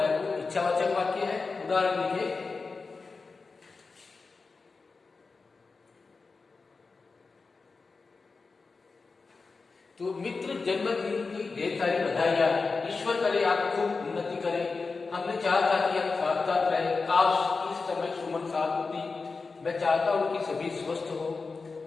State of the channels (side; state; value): right; quieter; 4.3 dB